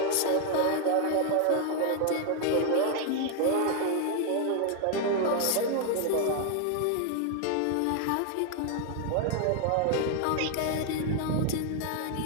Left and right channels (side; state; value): both; different; correlation 0.00